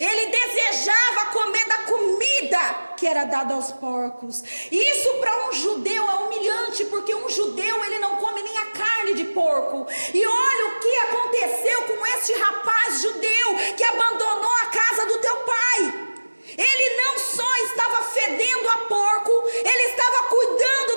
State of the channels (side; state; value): both; inverted; correlation -1.00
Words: desejava comer da comida que era dada aos porcos. Isso para um judeu é humilhante, porque um judeu ele não come nem a carne de porco. E olha o que aconteceu com este rapaz judeu que abandonou a casa do teu pai. Ele não só estava fedendo a porco, ele estava cuidando